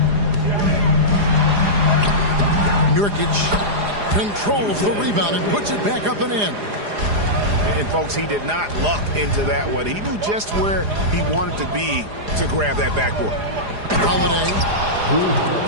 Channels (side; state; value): left; late; 4.9 ms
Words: Nurkic controls the rebound and puts it back up and in. And, folks, he did not luck into that one. He knew just where he wanted to be to grab that backboard. Holiday.